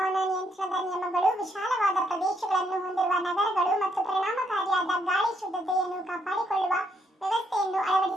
ನಿಯಂತ್ರಣದ ನಿಯಮಗಳು, ವಿಶಾಲವಾದ ಪ್ರದೇಶಗಳನ್ನು ಹೊಂದಿರುವ ನಗರಗಳು ಮತ್ತು ಪರಿಣಾಮಕಾರಿಯಾದ ಗಾಳಿ ಶುದ್ಧತೆಯನ್ನು ಕಾಪಾಡಿಕೊಳ್ಳುವ ವ್ಯವಸ್ಥೆಯನ್ನು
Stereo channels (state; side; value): normal; both; correlation 0.74